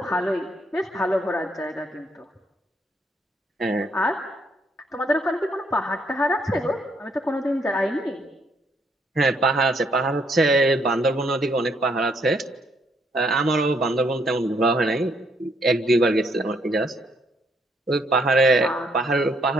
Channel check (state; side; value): normal; both; correlation 0.71